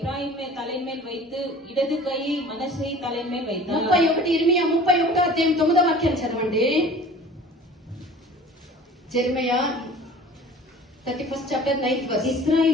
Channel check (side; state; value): both; normal; correlation 0.45